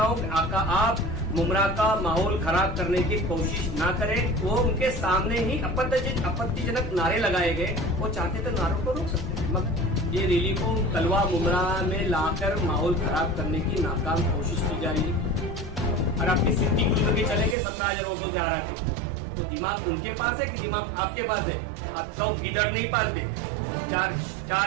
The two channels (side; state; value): left; drops out; at 17.6 s